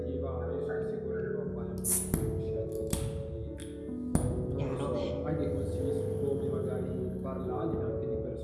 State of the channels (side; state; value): both; identical; correlation 1.00